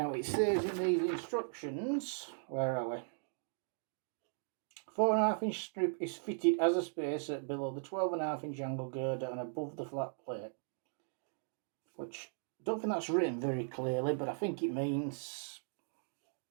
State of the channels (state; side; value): silent; left; digital silence